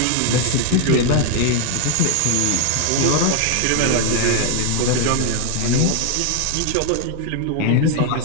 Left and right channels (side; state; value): both; different; correlation 0.00